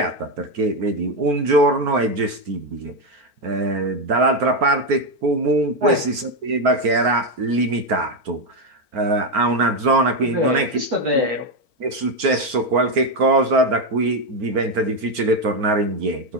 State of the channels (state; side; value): late; left; 4.5 ms